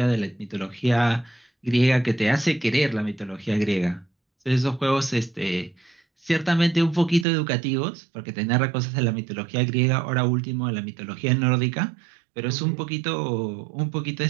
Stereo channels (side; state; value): left; drops out; at 7.2 s